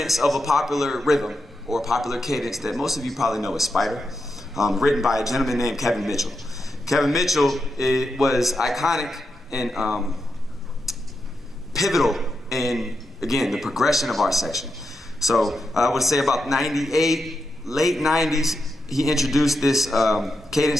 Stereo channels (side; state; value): both; normal; correlation 0.86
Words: of a popular rhythm or a popular cadence that most of you probably know as Spider, written by a gentleman named Kevin Mitchell. Kevin Mitchell was iconic and pivotal in, again, the progression of our section. So I would say about 98, late 90s, he introduced this cadence